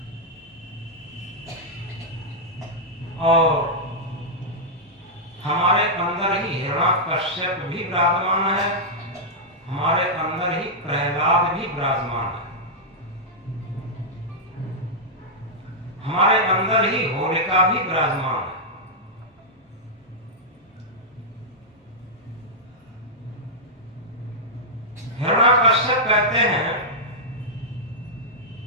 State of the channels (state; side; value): normal; both; correlation -0.07